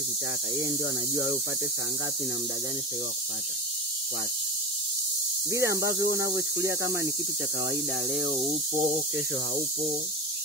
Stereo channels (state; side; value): normal; both; correlation 0.22